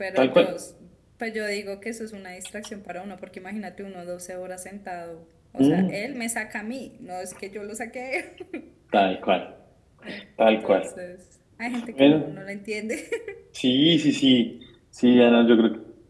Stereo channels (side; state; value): both; identical; correlation 1.00